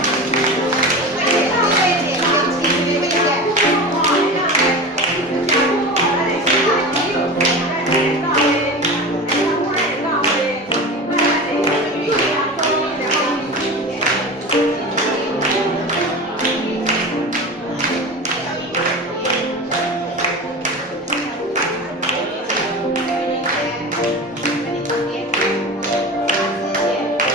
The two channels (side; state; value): both; normal; correlation 0.30